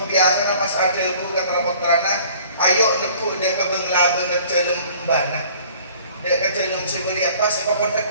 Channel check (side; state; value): both; inverted; correlation -0.52